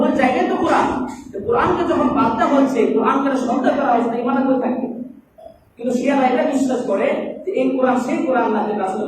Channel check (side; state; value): both; identical; correlation 1.00